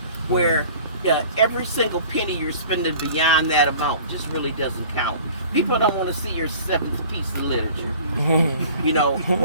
where every single penny you're spending beyond that amount just really doesn't count. People don't want to see your seventh piece of literature, you know,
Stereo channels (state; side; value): inverted; both; correlation -0.46